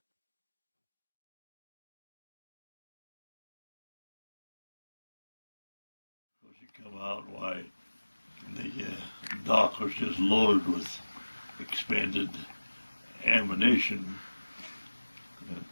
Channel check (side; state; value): both; inverted; correlation -1.00